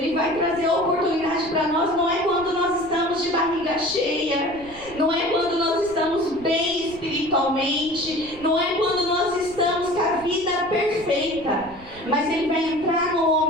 vai trazer oportunidade para nós. Não é quando nós estamos de barriga cheia, não é quando nós estamos bem espiritualmente, não é quando nós estamos com a vida perfeita, mas Ele vai entrar no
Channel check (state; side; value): noise; right; rumble, 20 dB below the sound